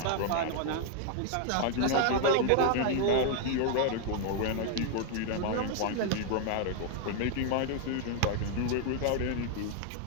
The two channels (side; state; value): both; different; correlation 0.00